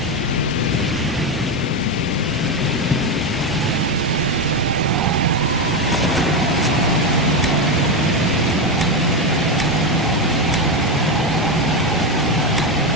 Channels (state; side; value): normal; both; correlation 0.12